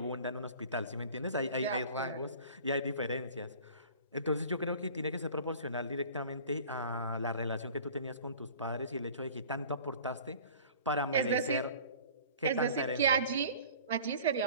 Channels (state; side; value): inverted; both; correlation -0.45